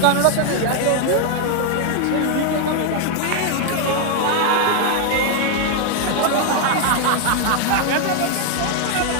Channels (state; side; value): different; both; correlation 0.00